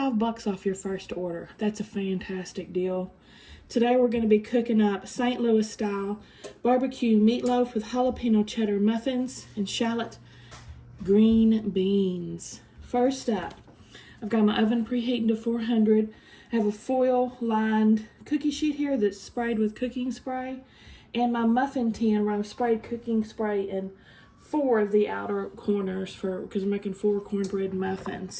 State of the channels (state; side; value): identical; both; correlation 1.00